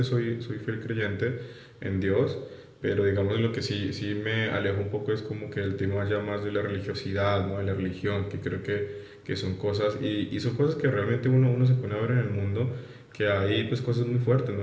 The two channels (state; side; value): identical; both; correlation 1.00